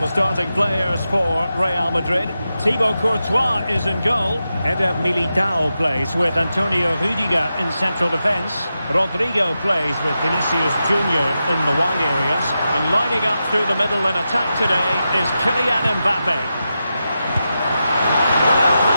starting players for Real Madrid. Thibaut Courtois is in goal. Eder Militao plays with Antonio Rüdiger in central defence. Rodrigo plays with Vinicius Junior in the wide areas. And lining up through the middle in attack today is Kylian Mbappe. Well,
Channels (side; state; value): both; inverted; correlation -0.89